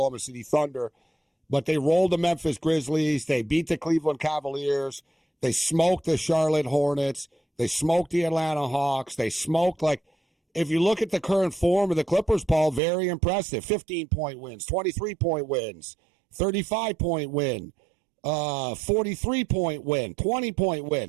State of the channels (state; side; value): drops out; left; at 12.8 s